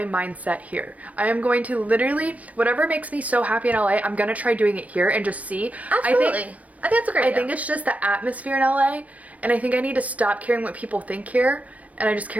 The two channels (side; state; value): left; late; 0.071 ms